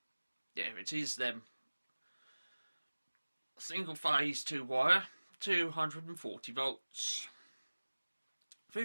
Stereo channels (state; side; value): inverted; both; correlation -1.00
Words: There it is then. Single phase 2 wire, 240 volts,